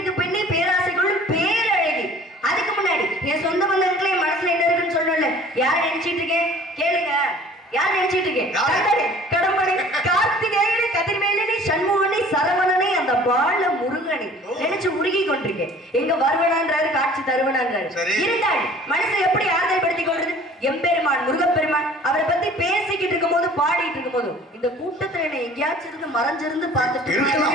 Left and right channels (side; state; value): both; normal; correlation 0.49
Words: பெண்ணே பேராசைக்குள்ள பேரழகி. அதுக்கு முன்னாடி என் சொந்த பந்தங்களே என் மனசுல என்ன இருக்குன்னு சொல்லல. யார் நினைச்சிட்டு இருக்கேன் கேளுங்க. யார் நினைச்சிட்டு இருக்கேன்? கடம்பனை, கார்த்திகேயனை, கதிர்வேலனை, சண்முகனை, சரவணனை, அந்த பால முருகனை நினைச்சு உருகி கொண்டிருக்கேன். எங்க வருவனான்றாரு, காட்சி தருவனான்றாரு. இருந்தாள் மனசை எப்படி ஆறுதல் படுத்திக் கொள்றது? எம்பெருமான் முருகப்பெருமான் அவரை பத்தி பேசிக்கிட்டு இருக்கும் போது பாடிட்டு இருக்கும் போது இந்த கூட்டத்துல என்ன எங்கேயாச்சும் இருந்து மறைஞ்சிருந்து பார்த்துட்டு